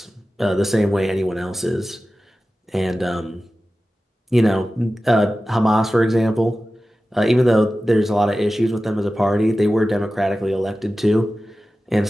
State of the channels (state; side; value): normal; both; correlation 0.95